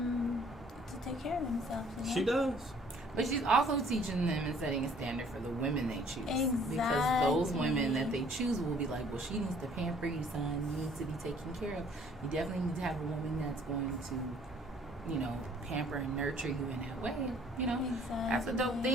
to take care of themselves. She does. But she's also teaching them and setting a standard for the women they choose. Exactly. Because those women that they choose will be like, well, she needs to pamper you, son. You need to be taken care of. You definitely need to have a woman that's going to, pamper and nurture you in that way. That's a dope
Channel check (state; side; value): normal; both; correlation 0.58